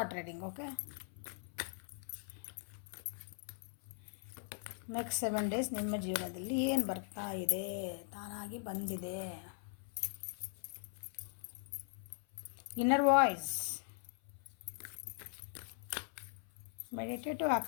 reading. Okay, next 7 days ನಿಮ್ಮ ಜೀವನದಲ್ಲಿ ಏನು ಬರ್ತಾ ಇದೆ, ತಾನಾಗಿ ಬಂದಿದೆ. ಇನ್ನರ್ ವಾಯ್ಸ್ ಮೆಡಿಟೇಟಿವ್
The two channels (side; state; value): right; silent; 51 dB below the other